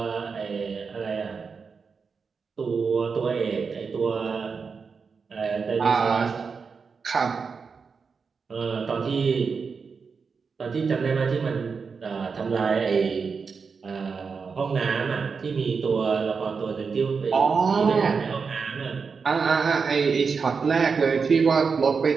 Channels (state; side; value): quieter; left; 5.3 dB